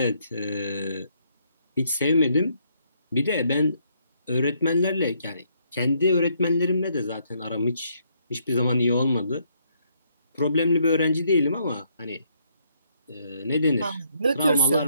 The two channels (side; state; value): both; inverted; correlation -0.71